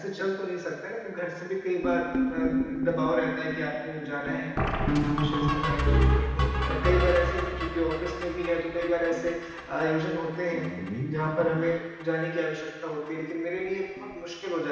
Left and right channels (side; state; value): both; identical; correlation 1.00